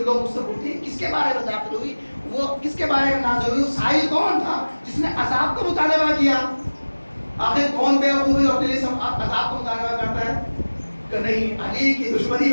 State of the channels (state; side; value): inverted; both; correlation -1.00